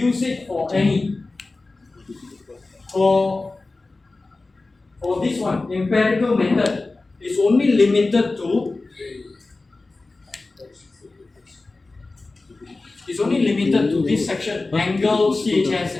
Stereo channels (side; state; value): right; quieter; 3.4 dB